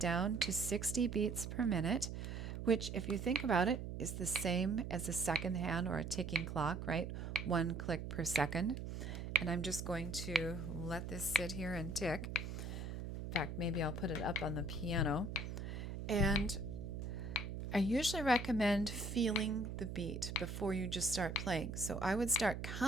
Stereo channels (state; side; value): noise; right; hum, 6 dB below the sound